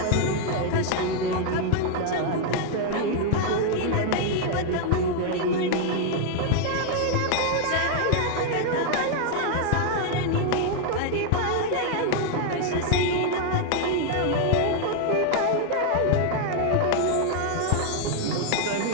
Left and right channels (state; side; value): different; both; correlation 0.00